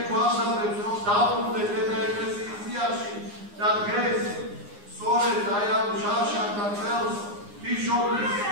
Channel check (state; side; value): late; left; 9.7 ms